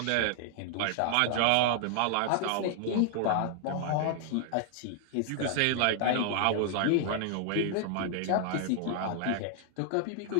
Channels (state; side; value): different; both; correlation 0.00